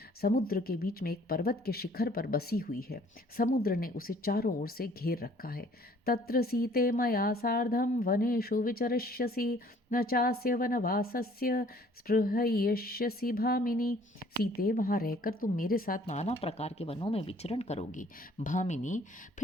समुद्र के बीच में एक पर्वत के शिखर पर बसी हुई है। समुद्र ने उसे चारों ओर से घेर रखा है। तत्र सीते मया सार्धं वनेषु विचरिष्यसि न चास्य वनवासस्य स्पृहयिष्यसि भामिनी। सीते, वहाँ रहकर तुम मेरे साथ नाना प्रकार के वनों में विचरण करोगी। भामिनी,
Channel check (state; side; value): normal; both; correlation 0.57